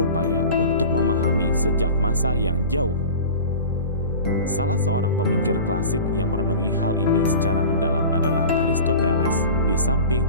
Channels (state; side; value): inverted; both; correlation -0.36